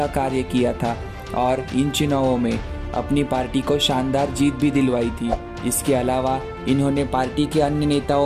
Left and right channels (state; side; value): identical; both; correlation 1.00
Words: कार्य किया था और इन चुनावों में अपनी पार्टी को शानदार जीत भी दिलवाई थी। इसके अलावा इन्होंने पार्टी के अन्य